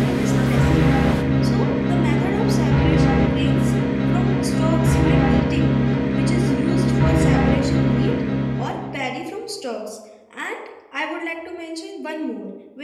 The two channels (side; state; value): both; identical; correlation 1.00